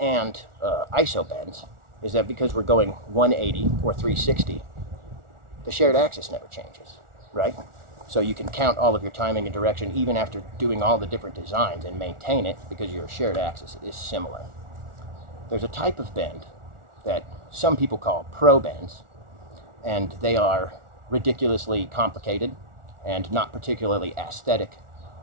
and iso bends is that because we're going 180 or 360, the shared axis never changes, right? So you can count all of your timing and direction even after doing all the different designs and maintain it because your shared axis is similar. There's a type of bend that some people call pro bends, and they are ridiculously complicated and not particularly aesthetic,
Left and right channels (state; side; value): late; left; 1.4 ms